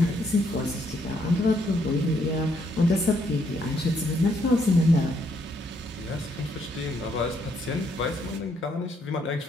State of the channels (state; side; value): normal; both; correlation 0.72